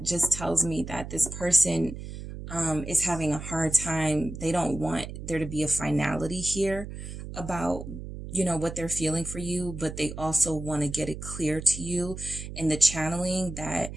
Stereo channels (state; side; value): noise; right; hum, 9 dB below the sound